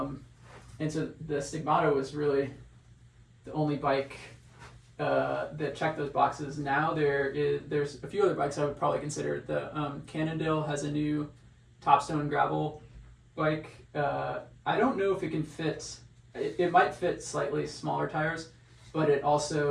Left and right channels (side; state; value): both; identical; correlation 1.00